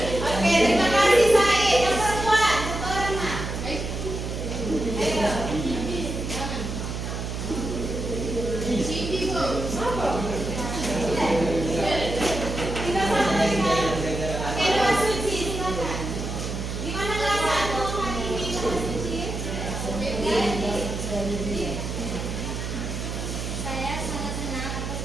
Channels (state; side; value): noise; right; hum, 5 dB below the sound